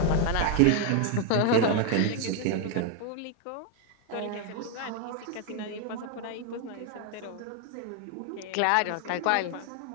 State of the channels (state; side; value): different; both; correlation 0.01